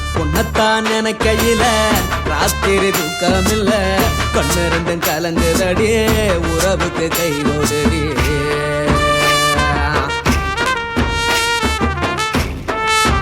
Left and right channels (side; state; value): both; identical; correlation 1.00